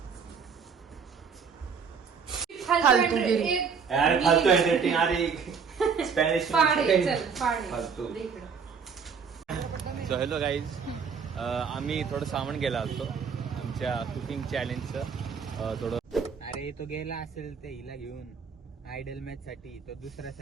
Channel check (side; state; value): left; quieter; 6.0 dB